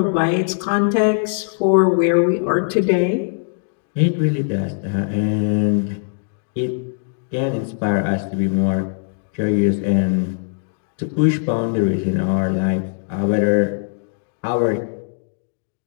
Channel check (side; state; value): right; silent; digital silence